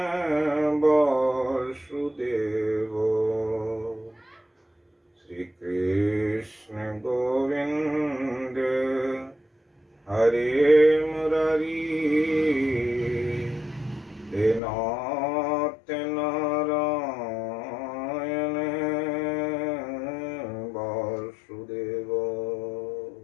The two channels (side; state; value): right; drops out; at 14.6 s